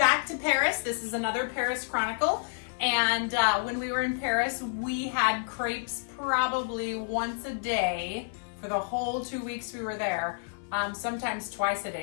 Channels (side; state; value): right; silent; 58 dB below the other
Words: to Paris. This is another Paris Chronicle. And when we were in Paris, we had crepes probably once a day for the whole 2 weeks we were there, sometimes twice a